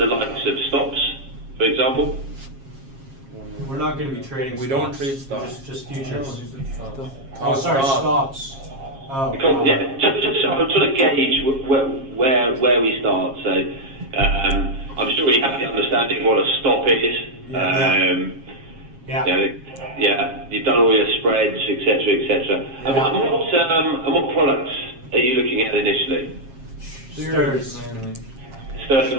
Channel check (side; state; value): left; late; 7.4 ms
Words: likes of stops, for example? We're not going to be trading. We don't trade stocks. Just futures. Oh, sorry, stop. stops. Oh. Because, yeah, just so I'm trying to gauge where we start. So I'm sure you have the understanding of what a stop is. Yeah. Yeah, you've done all your spreads, etc., etc. Yeah. And what products are you looking at initially? Stirs. Stirs